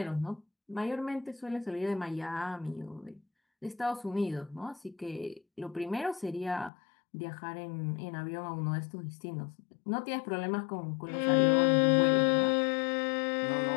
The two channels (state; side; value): drops out; right; at 6.7 s